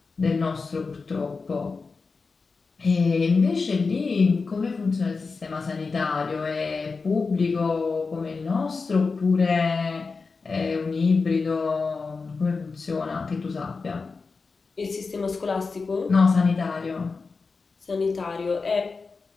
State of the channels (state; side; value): quieter; right; 4.4 dB